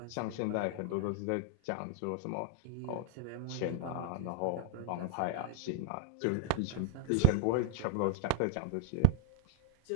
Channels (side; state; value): both; different; correlation 0.01